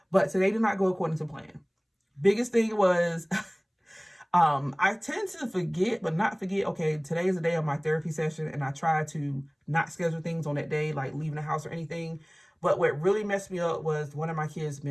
but today did not go according to plan. Biggest thing was I tend to forget, but not forget, okay, today is the day of my therapy session, and I try to not schedule things on that day, like leaving the house or anything. But what really messed me up was one of my kids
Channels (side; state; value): both; identical; correlation 1.00